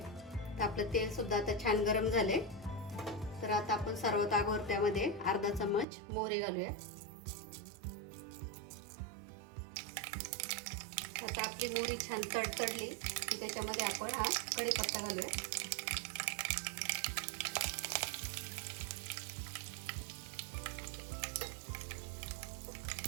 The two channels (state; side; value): drops out; left; at 5.9 s